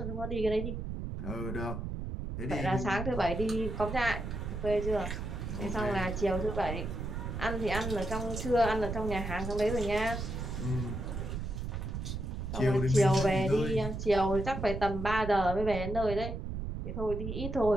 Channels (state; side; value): noise; right; rumble, 5 dB below the sound